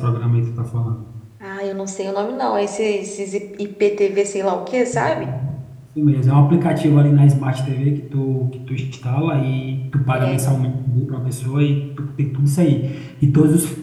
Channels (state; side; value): identical; both; correlation 1.00